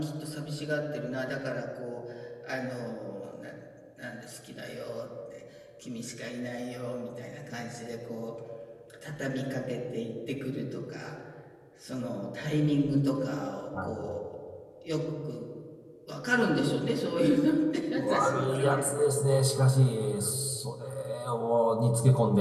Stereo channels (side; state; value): both; identical; correlation 1.00